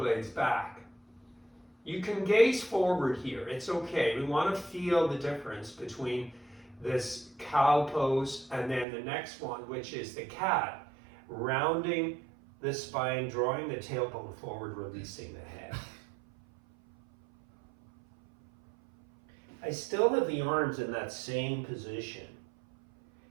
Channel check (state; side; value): drops out; left; at 8.8 s